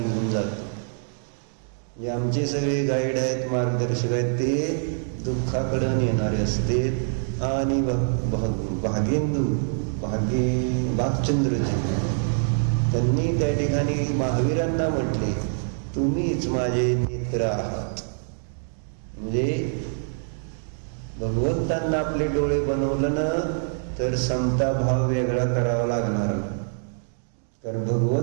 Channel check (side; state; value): left; silent; digital silence